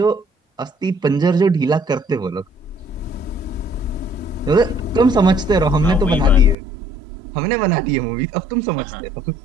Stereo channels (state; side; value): drops out; left; at 6.6 s